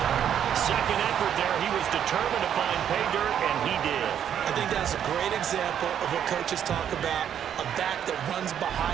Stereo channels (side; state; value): left; quieter; 9.3 dB